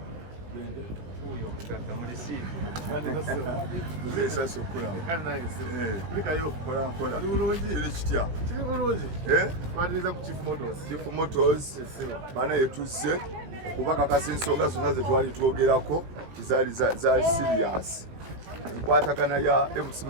Huyo mkaka mreceive. Mbese sokola. Kana naye se. Lika yo Kola. Ali bulungi. Kile kitya. Kiri bulungi. Twatiriza ku Chief Motors. Chief Motors. Bana yetuze kubaka kasensonga zonna ze twali twogerako kizali za serious. Kwatagana ya MC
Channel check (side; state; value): left; late; 18 ms